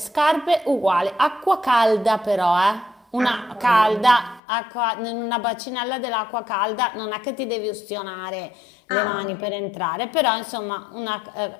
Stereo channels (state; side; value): drops out; right; at 4.4 s